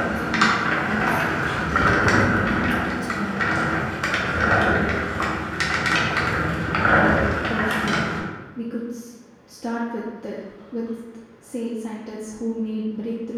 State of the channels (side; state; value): both; identical; correlation 1.00